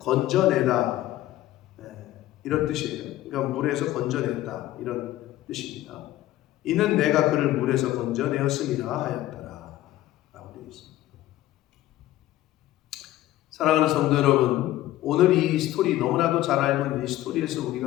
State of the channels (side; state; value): right; quieter; 14.9 dB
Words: 이런 뜻이에요. 그러니까 물에서 건져냈다 이런 뜻입니다. 이는 내가 그를 물에서 건져내었음이라 하였더라 라고 되어 있습니다. 사랑하는 성도 여러분, 오늘 이 스토리, 너무나도 잘 알고 있는 이 스토리에서